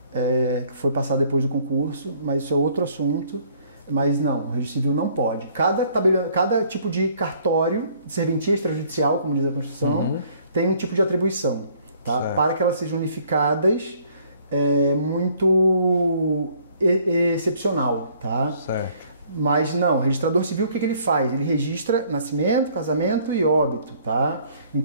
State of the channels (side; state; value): both; inverted; correlation -0.60